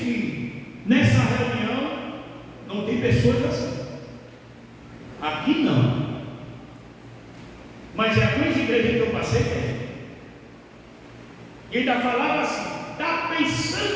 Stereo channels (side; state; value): both; identical; correlation 1.00